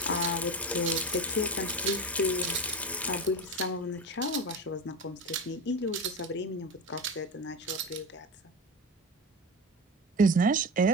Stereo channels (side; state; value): both; normal; correlation 0.24